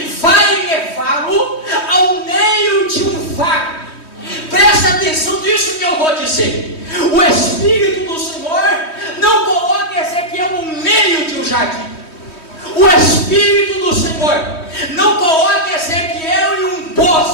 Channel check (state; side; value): late; right; 3.1 ms